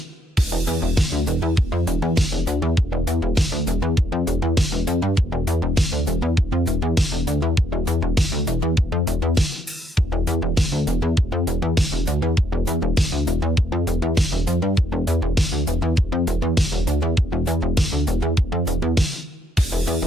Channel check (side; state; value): both; normal; correlation 0.73